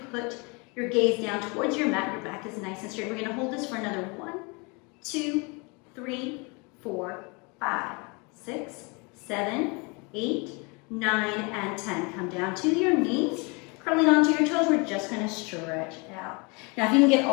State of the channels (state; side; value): quieter; right; 30.2 dB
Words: put your gaze down towards your mat, your back is nice and straight. We're gonna hold this for another 1, 2, 3, 4, 5, 6, 7, 8, 9, and 10. Come down to your knees, curling onto your toes. We're just going to stretch out. Now, if you can get